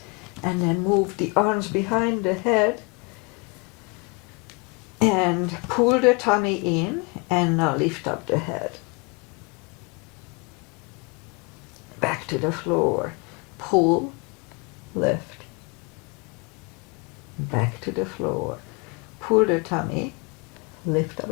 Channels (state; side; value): quieter; right; 30.7 dB